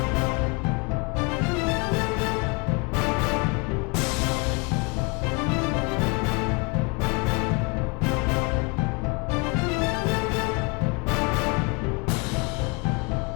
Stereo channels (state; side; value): quieter; right; 31.1 dB